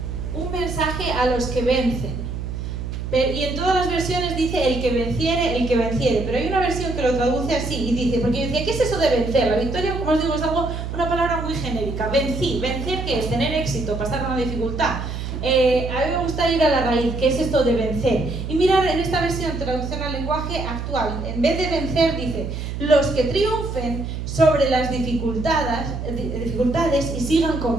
un mensaje a los que vencen. Y en todas las versiones dice el que venciere, pero hay una versión que lo traduce así y dice, porque yo decía, ¿qué es eso de vencer? La victoria, como os digo, es una palabra muy genérica. Vencer, ¿qué es? Tener éxito, pasar una dificultad. A mí me gusta ir a la raíz, ¿qué es esto de vencer? Y mirar en esta versión, traducción al lenguaje actual, en vez de vencer dice, los que triunfen sobre las dificultades y sigan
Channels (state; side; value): noise; right; hum, 5 dB below the sound